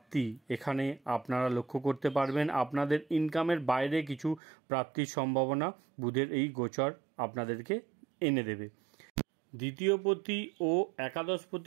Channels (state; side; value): drops out; left; at 4.4 s